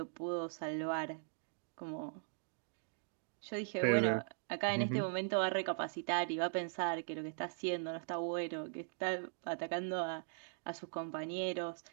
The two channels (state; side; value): silent; left; digital silence